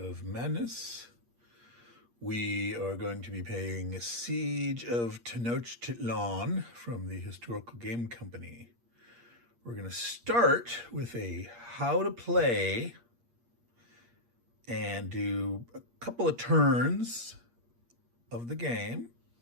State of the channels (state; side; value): late; left; 8.5 ms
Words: Madness. We are going to be playing Siege of Tenochtitlan from the Historical Game Company. We're going to start with a how to play and do a couple of turns of the game.